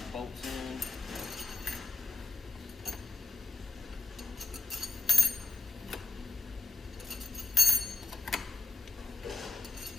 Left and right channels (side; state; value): right; quieter; 3.7 dB